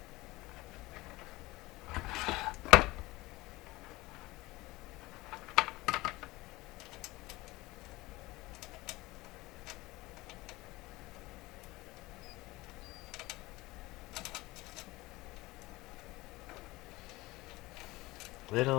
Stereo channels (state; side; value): quieter; right; 20.4 dB